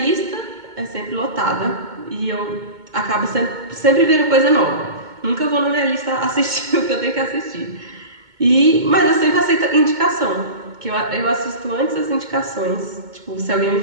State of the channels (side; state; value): left; late; 2.2 ms